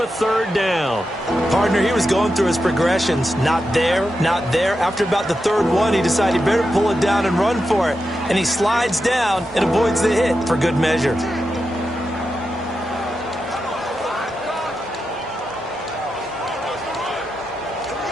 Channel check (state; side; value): normal; both; correlation 0.88